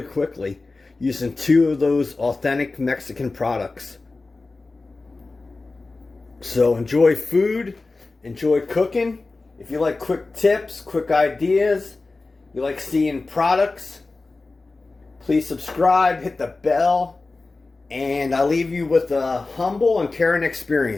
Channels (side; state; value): right; quieter; 3.5 dB